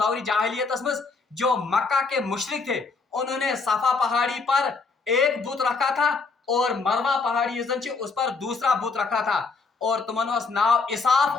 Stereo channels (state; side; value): quieter; right; 4.3 dB